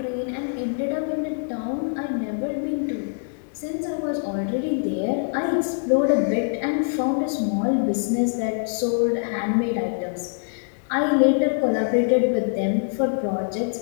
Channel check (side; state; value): right; silent; digital silence